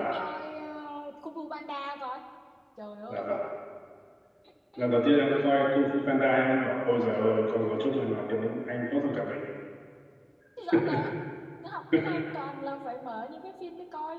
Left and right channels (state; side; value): identical; both; correlation 1.00